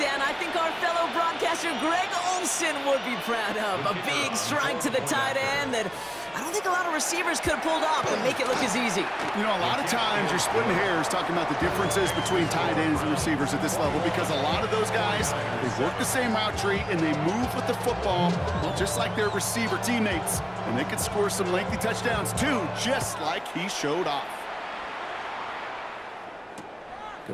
I think our fellow broadcaster Greg Olsen would be proud of. A big strike to the tight end that I don't think a lot of receivers could have pulled off and make it look as easy. You know, a lot of times you're splitting hairs talking about the differences between tight ends and receivers at this level because a lot of those guys, they work the same route tree and they move with the football, well, just like their receiver teammates. And they can score some lengthy touchdowns too, just like he showed off.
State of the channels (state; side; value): identical; both; correlation 1.00